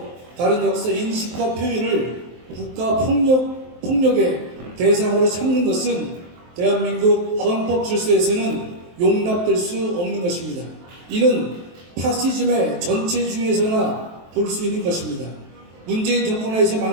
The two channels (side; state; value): left; late; 23 ms